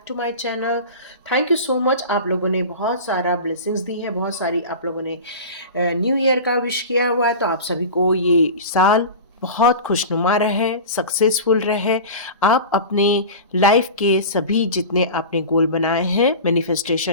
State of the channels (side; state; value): both; inverted; correlation -0.31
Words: to my channel. Thank you so much. आप लोगों ने बहुत सारा ब्लेसिंग्स दी है, बहुत सारी आप लोगों ने न्यू ईयर का विश किया हुआ है। तो आप सभी को ये साल बहुत खुशनुमा रहे, सक्सेसफुल रहे। आप अपने लाइफ के सभी जितने आपने गोल बनाए हैं,